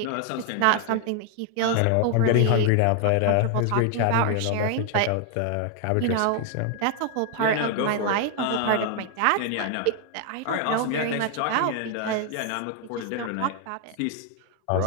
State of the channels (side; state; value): both; different; correlation 0.00